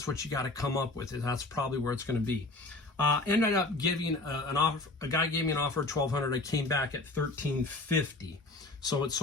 what you got to come up with. That's probably where it's going to be. Ended up giving an offer. A guy gave me an offer of $1,200. I came back at $1,350. So it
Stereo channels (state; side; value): quieter; right; 3.0 dB